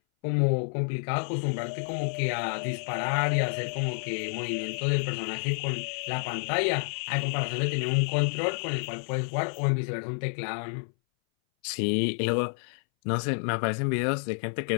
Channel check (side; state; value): right; silent; 59 dB below the other